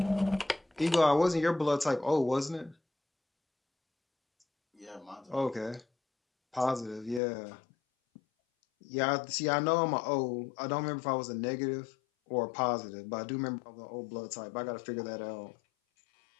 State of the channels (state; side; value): drops out; right; at 7.2 s